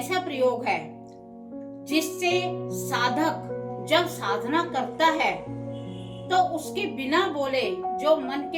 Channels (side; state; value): both; identical; correlation 1.00